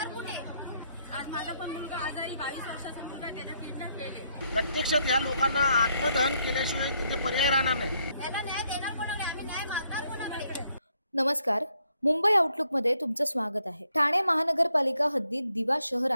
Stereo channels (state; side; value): inverted; both; correlation -0.73